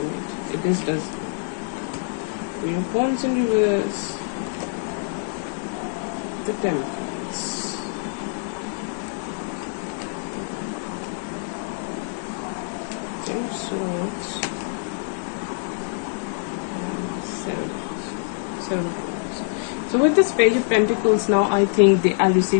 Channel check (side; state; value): right; silent; 62 dB below the other